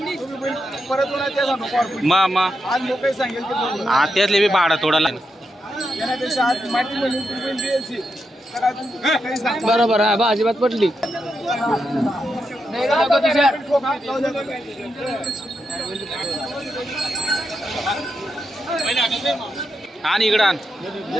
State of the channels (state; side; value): normal; both; correlation 0.85